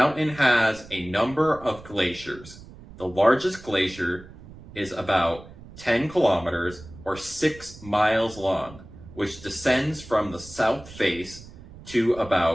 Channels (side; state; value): right; noise; rumble, 18 dB below the sound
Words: has a number of glaciers. The largest glacier is about 10 kilometers or 6 miles long, which descends from the south face to